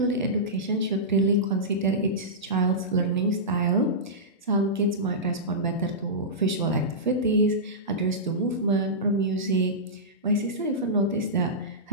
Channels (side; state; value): both; normal; correlation -0.16